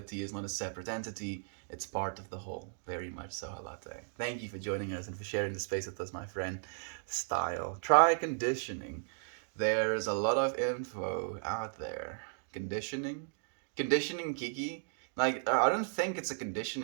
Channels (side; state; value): left; silent; digital silence